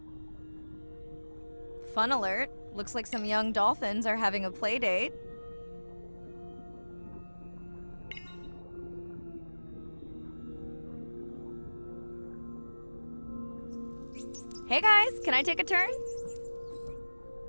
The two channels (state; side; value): inverted; both; correlation -1.00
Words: Fun alert. Looks like some young dolphins are having a play date. Hey guys, can I take a turn?